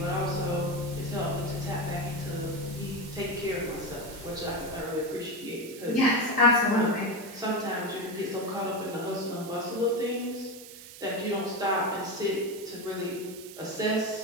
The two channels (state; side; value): noise; right; hiss, 15 dB below the sound